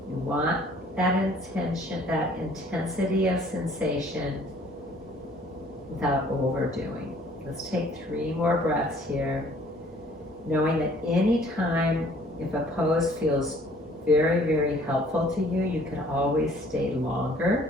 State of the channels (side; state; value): both; normal; correlation 0.56